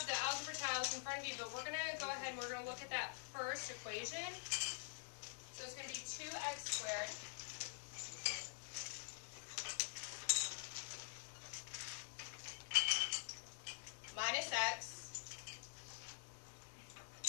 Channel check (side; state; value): right; silent; digital silence